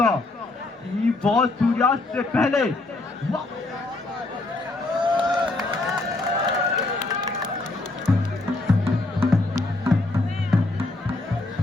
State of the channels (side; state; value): right; quieter; 3.0 dB